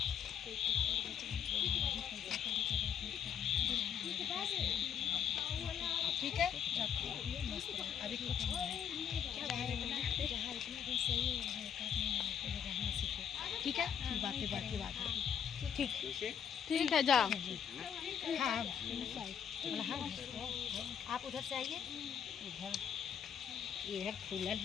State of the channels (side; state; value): right; quieter; 8.3 dB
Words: ठीक है। अभी कुछ ठीक है, बाकी बात है। ठीक है जाओ। हाँ आप उधर से आइए। इधर फूलल